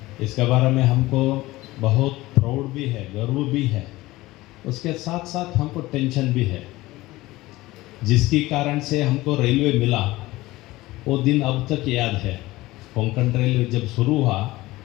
इसके बारे में हमको बहुत प्राउड भी है, गर्व भी है, उसके साथ साथ हमको टेंशन भी है। जिसके कारण से हमको रेलवे मिला वो दिन अब तक याद है। कोंकण रेलवे जब शुरू हुआ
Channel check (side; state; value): right; quieter; 18.7 dB